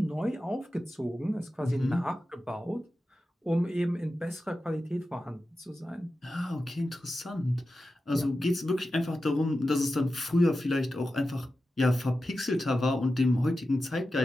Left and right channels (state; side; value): normal; both; correlation 0.92